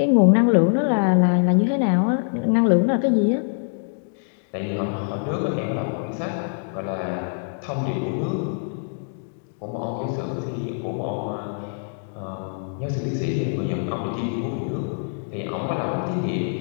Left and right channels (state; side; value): silent; right; digital silence